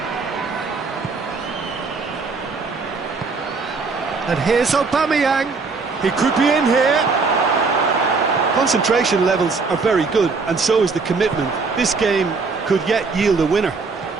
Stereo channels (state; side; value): quieter; left; 4.4 dB